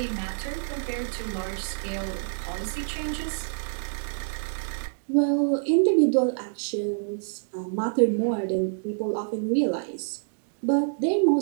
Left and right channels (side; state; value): left; silent; digital silence